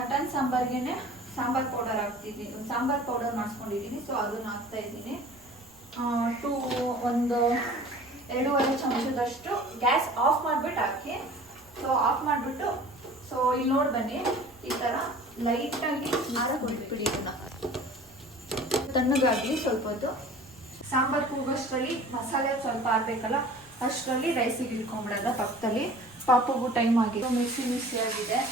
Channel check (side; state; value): right; noise; rumble, 28 dB below the sound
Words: ಸಾಂಬಾರ್ಗೆ ಸಾಂಬಾರ್ ಪೌಡರ್ ಹಾಕ್ತಿದ್ದೀನಿ, ಸಾಂಬಾರ್ ಪೌಡರ್ ಮಾಡಿಸ್ಕೊಂಡಿದ್ದೀನಿ. ಸೊ ಅದನ್ನ ಹಾಕ್ತಾ ಇದ್ದೀನಿ. ಒಂದು 2.5 ಚಮಚದಷ್ಟು ಗ್ಯಾಸ್ ಆಫ್ ಮಾಡಿಬಿಟ್ಟು ಹಾಕಿ. ಸೊ ಆಫ್ ಮಾಡಿಬಿಟ್ಟು, ಸೊ ಇಲ್ಲಿ ನೋಡಿ ಬನ್ನಿ, ಈ ಥರ ಲೈಟಾಗಿ ಬಿಟ್ಬಿಡಿ. ಇದನ್ನ ತಣ್ಣಗಾಗಲಿ ಸ್ವಲ್ಪ ಹೊತ್ತು. ಸಾಂಬಾರು ಕೂಗೋಷ್ಟರಲ್ಲಿ ಮಸಾಲೆ ಸ್ವಲ್ಪ ಆಡಬೇಕಲ್ಲ, ಅಷ್ಟರಲ್ಲಿ ರೈಸಿಗೆ ಇಟ್ಕೊಂಡ್ಬಿಡೋದ ಪಕ್ಕದಲ್ಲಿ. ಪಾಪುಗೂ ಟೈಮ್ ಆಗಿದೆ, ಮಿಕ್ಸಿ ಆಗಿದೆ,